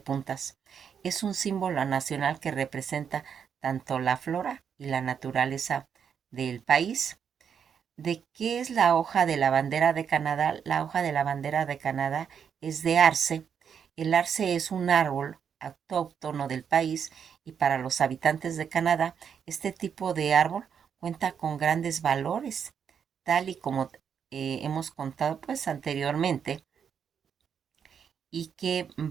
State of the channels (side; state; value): left; quieter; 7.5 dB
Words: Es un símbolo nacional que representa tanto la flora y la naturaleza del país. ¿De qué es la hoja de la bandera de Canadá? La hoja de la bandera de Canadá es de arce. El arce es un árbol autóctono del país y para los habitantes de Canadá, este tipo de árbol cuenta con grandes valores, tal y como hemos contado pues anteriormente y que